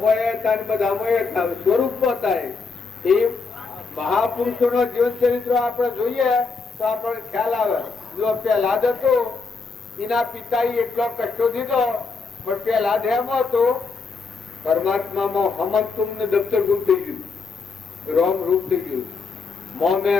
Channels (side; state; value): right; quieter; 4.6 dB